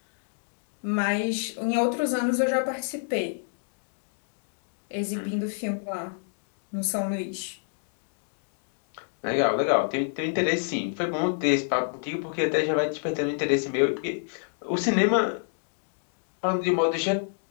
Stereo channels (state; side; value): silent; right; digital silence